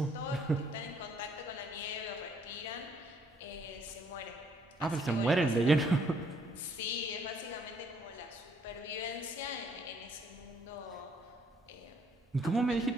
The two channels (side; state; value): both; normal; correlation 0.66